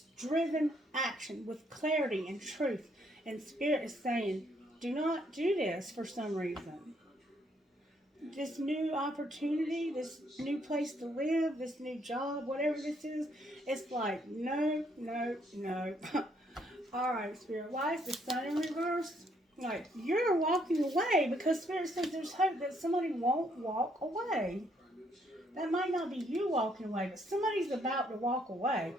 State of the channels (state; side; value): normal; both; correlation 0.70